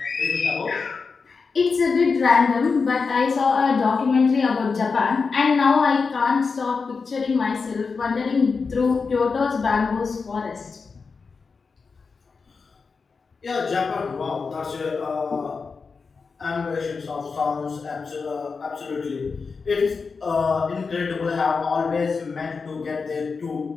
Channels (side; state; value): right; quieter; 4.9 dB